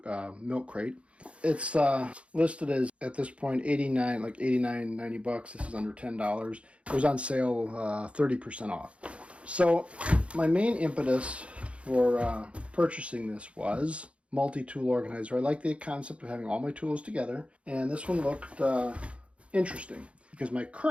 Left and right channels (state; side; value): late; left; 0.061 ms